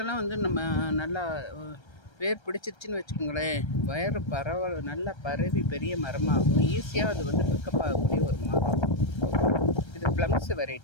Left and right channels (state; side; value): late; right; 1.3 ms